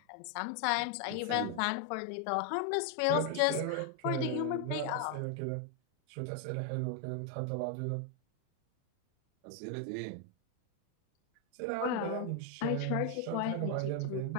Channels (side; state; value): both; different; correlation 0.00